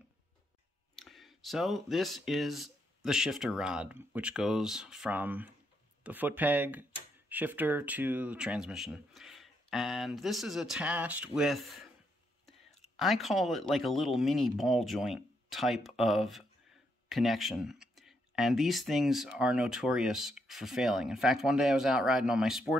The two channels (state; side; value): normal; both; correlation 0.78